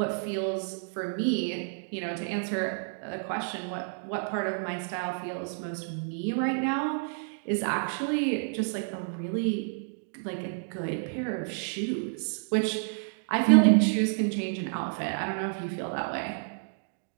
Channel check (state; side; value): silent; left; digital silence